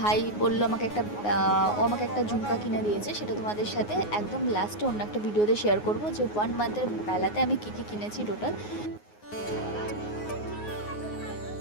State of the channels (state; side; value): late; right; 9.5 ms